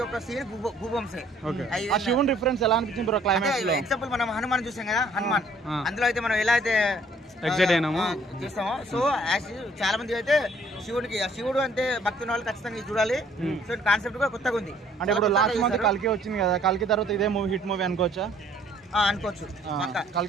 ఒక్క సీన్ గూబంసే. ఎగ్జాంపుల్ మనం హనుమాన్ చూసాం కదా. హనుమాన్ అందులో అయితే మనం ఎలా అయితే చూస్తామో సో చాలా మంది అయితే శివుడు అంటే భక్తున్న వాళ్ళు ఖచ్చితంగా చూడాలి. సో కాన్సెప్ట్ కూడా కొత్తగా ఉంది. అంటే ఇప్పుడు లాస్ట్ మంత్ కల్కి వచ్చింది కదా. కల్కి తర్వాత ఇదే మూవీ హిట్ మూవీ అనుకోవచ్చా? అనుకోవచ్చు.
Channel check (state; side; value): normal; both; correlation 0.60